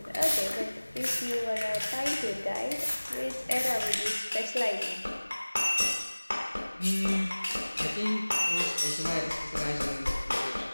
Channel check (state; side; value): inverted; both; correlation -1.00